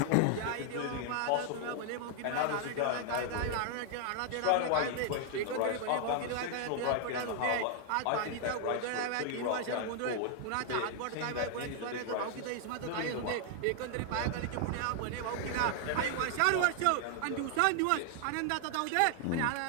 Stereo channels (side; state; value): both; different; correlation 0.00